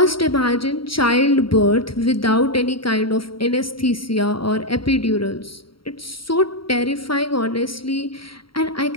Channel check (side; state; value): right; late; 0.74 ms